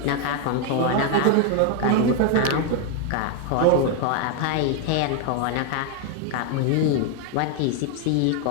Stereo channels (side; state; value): both; different; correlation 0.01